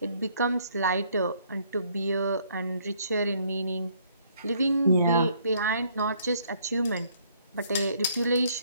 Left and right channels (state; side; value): inverted; both; correlation -0.65